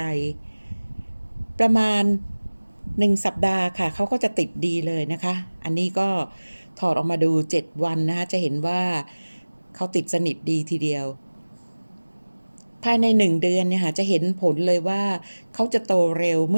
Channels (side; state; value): both; inverted; correlation -1.00